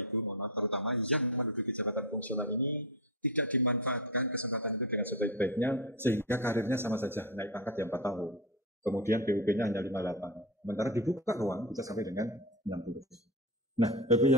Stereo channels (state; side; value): normal; both; correlation 0.17